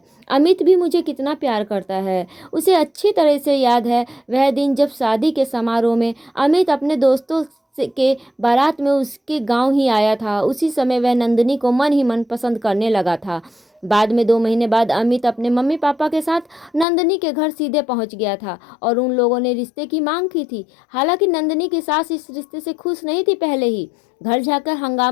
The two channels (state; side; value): drops out; right; at 16.9 s